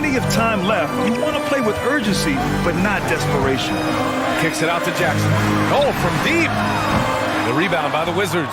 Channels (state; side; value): identical; both; correlation 1.00